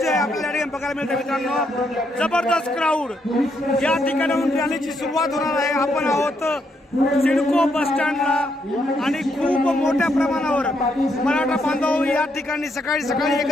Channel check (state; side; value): normal; both; correlation 0.76